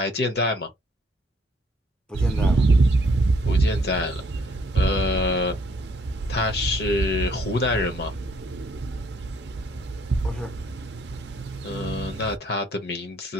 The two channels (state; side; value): normal; both; correlation 0.65